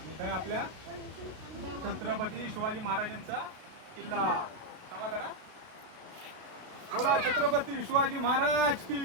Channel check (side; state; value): left; late; 32 ms